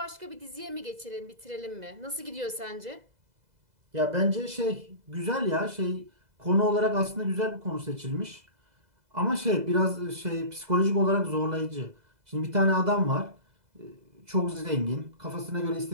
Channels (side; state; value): left; late; 2.0 ms